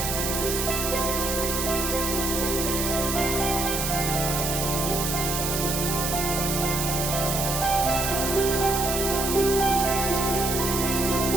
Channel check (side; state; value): right; noise; hiss, 2 dB below the sound